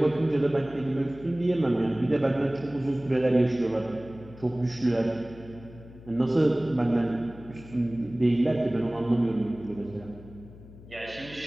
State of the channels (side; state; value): left; noise; hum, 19 dB below the sound